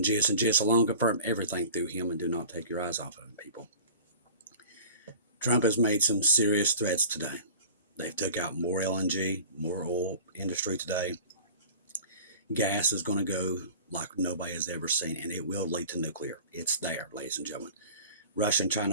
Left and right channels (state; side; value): inverted; both; correlation -0.42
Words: Jesus and Jesus alone. Confirm everything through him and do not take your eyes off of him, people. Trump has made some serious threats today. They've took out more LNG, more oil industry today. Gas is going to go like nobody has ever seen, and it will lead to nuclear. It's there, ladies and gentlemen. Russia and China